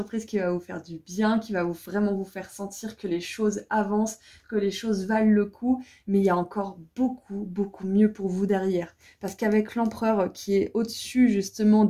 qui va vous faire du bien, qui va vraiment vous faire sentir que les choses avancent, que les choses valent le coup, mais il y a encore beaucoup, beaucoup mieux pour vous derrière. Parce qu'avec l'empereur qui est au-dessus justement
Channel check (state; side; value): identical; both; correlation 1.00